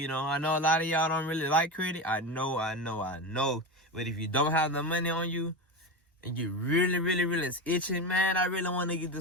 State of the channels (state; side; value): normal; both; correlation 0.20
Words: know a lot of y'all don't really like credit. I know. But if you don't have the money on you, and you really is itching, man, I really want to get